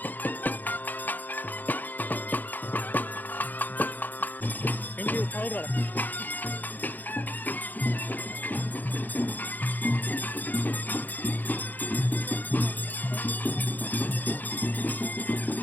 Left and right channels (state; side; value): late; right; 0.085 ms